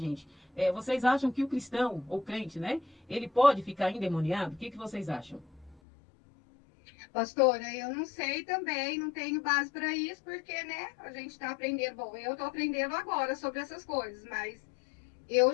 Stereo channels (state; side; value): drops out; right; at 5.8 s